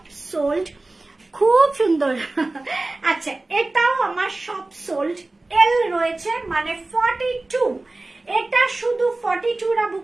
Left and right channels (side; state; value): left; quieter; 3.0 dB